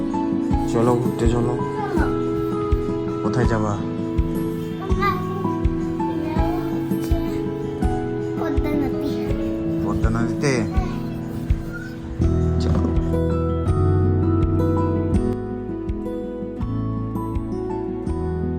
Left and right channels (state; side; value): identical; both; correlation 1.00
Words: চলো ঘুরতে চলো। কোথায় যাবা? পদ্মা নদীতে। চলো।